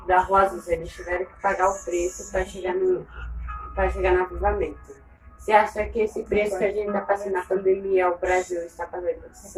da Rosas, eles tiveram que pagar o preço para chegar no avivamento. Você acha que esse preço que a gente está passando na pandemia, o Brasil está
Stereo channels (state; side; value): identical; both; correlation 1.00